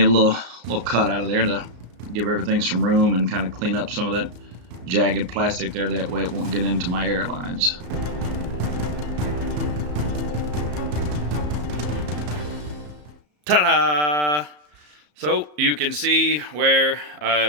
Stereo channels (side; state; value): left; late; 34 ms